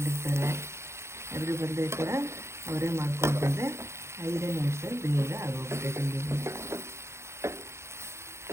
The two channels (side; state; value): left; late; 0.13 ms